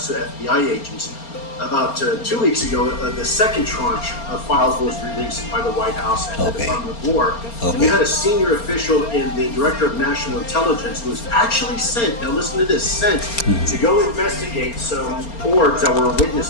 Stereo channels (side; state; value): right; late; 4.3 ms